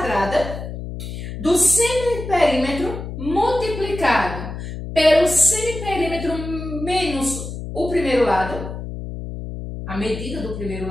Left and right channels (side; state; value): left; noise; hum, 8 dB below the sound